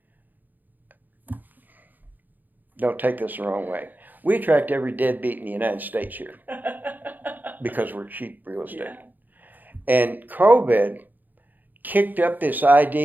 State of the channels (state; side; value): late; left; 0.085 ms